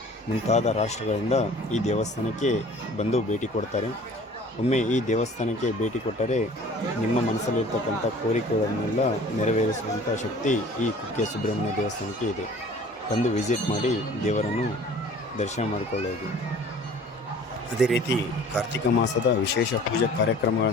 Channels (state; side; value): normal; both; correlation 0.49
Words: ಮುಂತಾದ ರಾಷ್ಟ್ರಗಳಿಂದ ಈ ದೇವಸ್ಥಾನಕ್ಕೆ ಬಂದು ಭೇಟಿ ಕೊಡ್ತಾರೆ. ಒಮ್ಮೆ ಈ ದೇವಸ್ಥಾನಕ್ಕೆ ಭೇಟಿ ಕೊಟ್ಟರೆ ನಿಮ್ಮ ಮನಸ್ಸಲ್ಲಿರ್ತಕ್ಕಂಥ ಕೋರಿಕೆಗಳನ್ನೆಲ್ಲ ನೆರವೇರಿಸುವಂಥ ಶಕ್ತಿ ಈ ಕುಕ್ಕೆ ಸುಬ್ರಹ್ಮಣ್ಯ ದೇವಸ್ಥಾನಕ್ಕೆ ಇದೆ. ಬಂದು ವಿಸಿಟ್ ಮಾಡಿ ದೇವರನ್ನು ದರ್ಶನ ಮಾಡಿಕೊಳ್ಳೋದು. ಅದೇ ರೀತಿ ಕಾರ್ತಿಕ ಮಾಸದ ವಿಶೇಷ ಪೂಜಾ